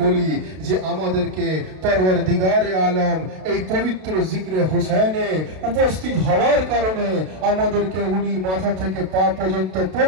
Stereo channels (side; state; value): left; late; 32 ms